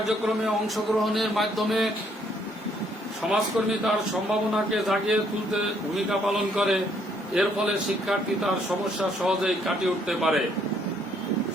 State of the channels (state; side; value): normal; both; correlation 0.68